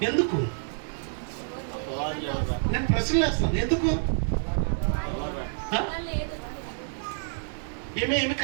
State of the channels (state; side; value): silent; left; 59 dB below the other